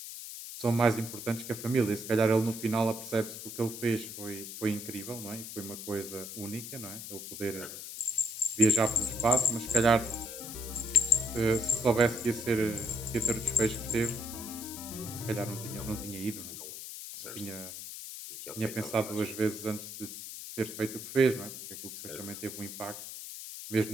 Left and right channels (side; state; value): left; noise; hiss, 10 dB below the sound